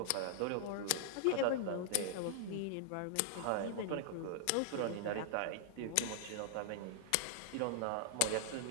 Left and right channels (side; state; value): both; different; correlation -0.01